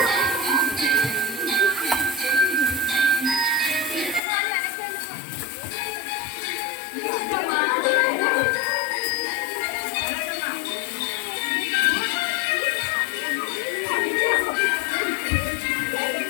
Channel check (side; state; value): right; drops out; at 4.2 s